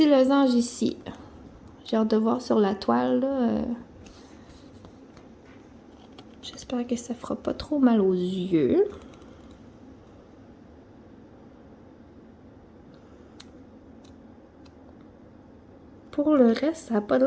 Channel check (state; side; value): identical; both; correlation 1.00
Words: losange ici. J'ai hâte de voir sur la toile, là. J'espère que ça fera pas trop mal aux yeux. Pour le reste, ça n'a pas